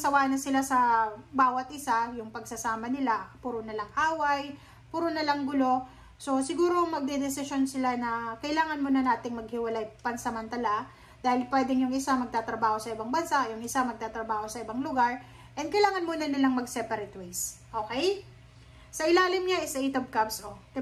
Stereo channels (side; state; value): both; identical; correlation 1.00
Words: na sila sa bawat isa, yung pagsasama nila, puro na lang away, puro na lang gulo. So, siguro magdedesisyon sila na kailangan muna nating maghiwalay pansamantala dahil pwedeng yung isa magtatrabaho sa ibang bansa, yung isa magtatrabaho sa ibang lugar, and kailangan muna nilang mag-separate ways. Okay? Sa ilalim niya is 8 of Cups. Oh.